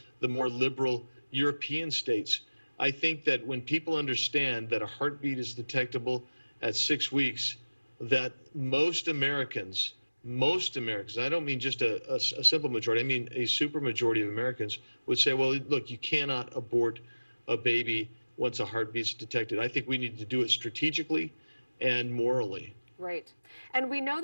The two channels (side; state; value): both; inverted; correlation -1.00